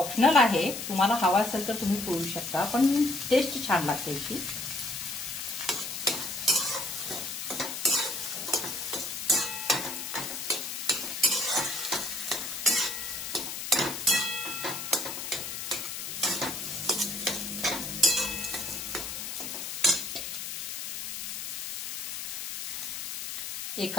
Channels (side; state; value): left; noise; hiss, 5 dB below the sound